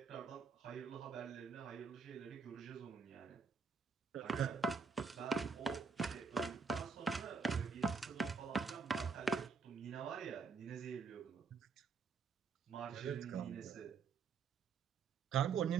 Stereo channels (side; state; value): left; quieter; 5.5 dB